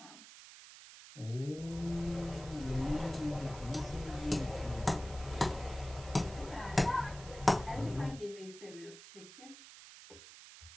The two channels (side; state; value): right; noise; hiss, 16 dB below the sound